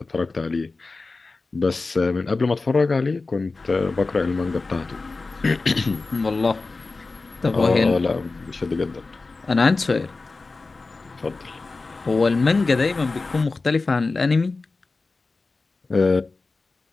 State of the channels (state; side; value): quieter; right; 3.7 dB